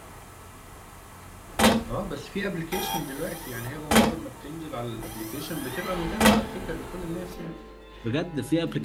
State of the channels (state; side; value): identical; both; correlation 1.00